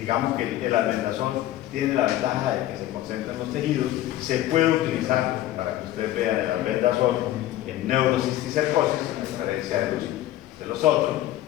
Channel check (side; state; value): right; quieter; 14.1 dB